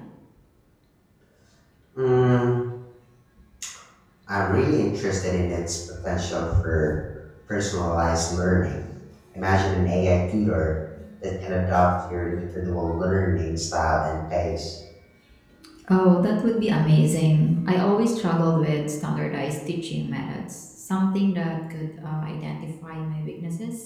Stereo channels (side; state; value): both; identical; correlation 1.00